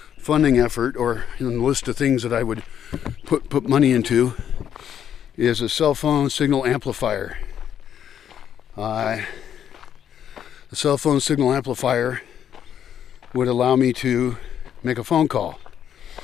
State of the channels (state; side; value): quieter; right; 9.3 dB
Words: funding effort, or in the list of things that I would put money into, is a cell phone signal amplifier. The cell phone signal amplifier would allow me to make a phone call.